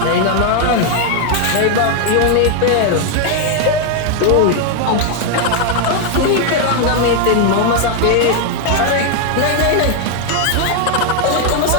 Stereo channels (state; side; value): different; both; correlation 0.00